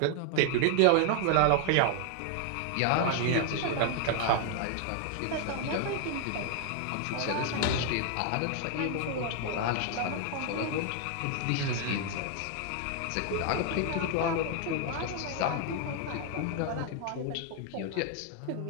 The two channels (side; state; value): both; different; correlation 0.00